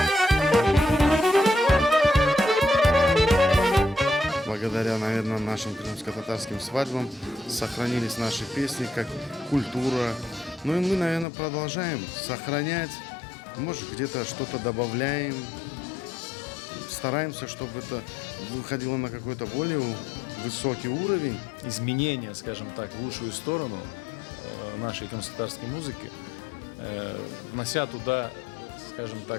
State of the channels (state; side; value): drops out; right; at 11.2 s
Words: Благодаря, наверное, нашим крымско-татарским свадьбам сохранились наши песни как культура. Ну и мы, наверное, продолжаем сохранять, может, где-то что-то добавляем. Стараемся, чтобы это выходило на какой-то более высокий уровень. Изменения, скажем так, в лучшую сторону нашей крымско-татарской музыки, внося туда, скажем так,